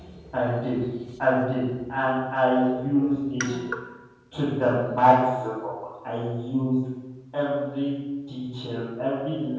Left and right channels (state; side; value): identical; both; correlation 1.00